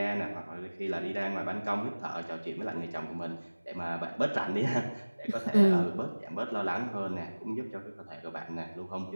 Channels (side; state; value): both; inverted; correlation -1.00